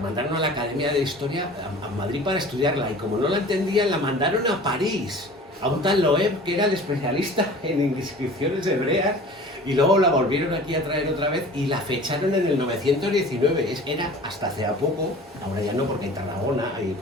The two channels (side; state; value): both; normal; correlation 0.42